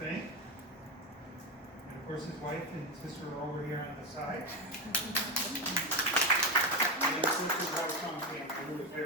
And of course, his wife and sister are over here on the side. And of course, his wife's on family, who was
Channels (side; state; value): both; normal; correlation 0.14